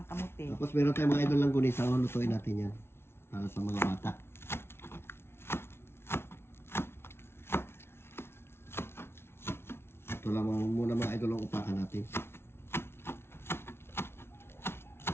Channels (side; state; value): right; late; 0.12 ms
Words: kamuti. Tapos meron tayong mga idol lang gunisa. Lutuin natin yan. Para sa mga bata. Ito lang muna mga idol ang upakan natin.